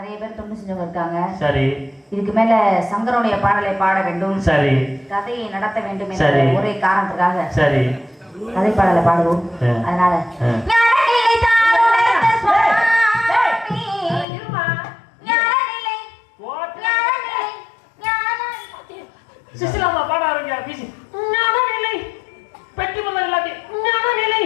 பேர் தொண்டு செஞ்சவங்க இருக்காங்க சரி இதுக்கு மேல சங்கரனுடைய பாடலை பாட வேண்டும் சரி கதையை நடத்த வேண்டும் என்ற ஒரே காரணத்துக்காக சரி கதை பாடலை பாடுவோம் அதனால சிசிலாமா பாட ஆரம்பியா பேசி ஞானநிலை பெட்டி பண்ண எல்லாத்தையும் ஞானநிலை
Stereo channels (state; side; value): drops out; right; at 14.2 s